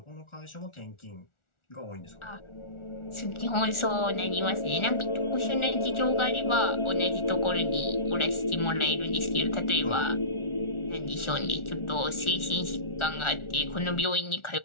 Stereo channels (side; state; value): right; late; 1.4 ms